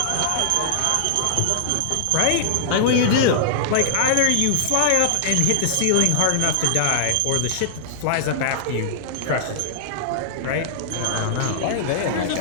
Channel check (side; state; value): both; different; correlation -0.01